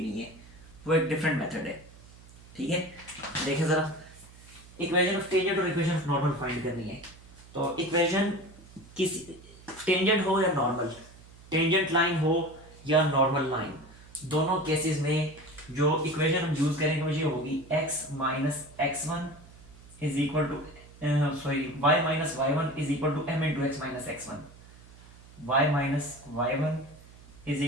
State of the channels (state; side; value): noise; right; hum, 22 dB below the sound